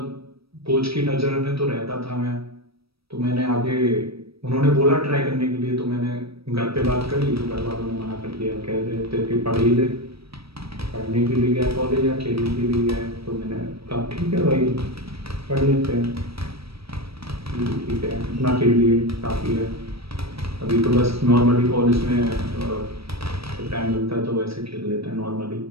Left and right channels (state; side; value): late; left; 0.76 ms